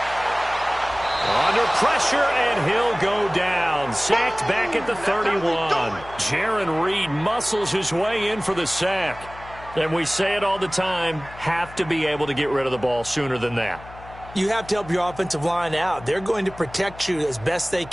Under pressure, and he'll go down. Sacked back at the 31. Jaron Reed muscles his way in for the sack. And we say it all the time, have to be able to get rid of the ball sooner than that. You have to help your offensive line out. They're going to protect you as best they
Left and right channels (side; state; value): left; noise; hum, 18 dB below the sound